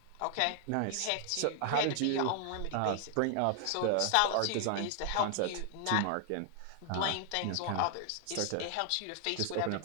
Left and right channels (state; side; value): different; both; correlation 0.00